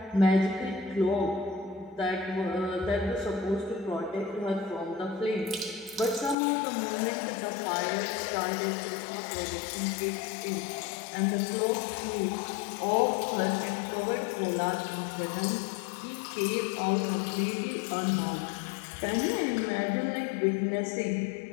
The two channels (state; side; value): drops out; right; at 6.4 s